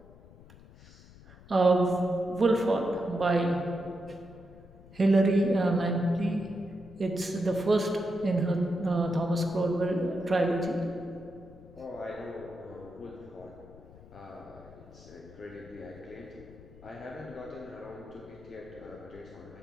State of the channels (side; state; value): left; noise; rumble, 21 dB below the sound